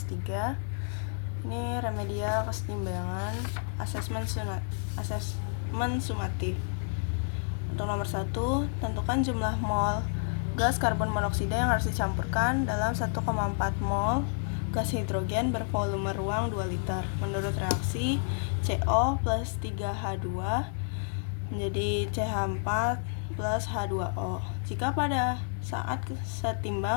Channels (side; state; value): right; silent; 58 dB below the other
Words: Ini remedial kesetimbangan asesmen sumatif. Untuk nomor 1, tentukan jumlah mol gas karbon monoksida yang harus dicampurkan dalam 1,4 mol gas hidrogen bervolume ruang 2 liter menurut reaksi CO plus 3H2 menjadi CH4 plus H2O. Jika pada saat